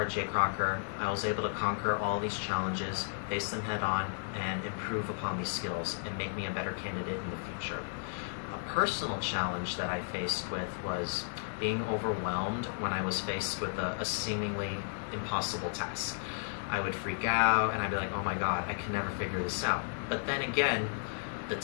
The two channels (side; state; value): right; silent; digital silence